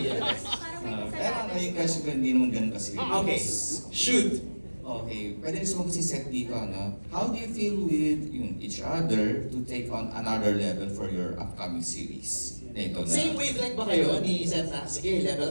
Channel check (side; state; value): both; inverted; correlation -1.00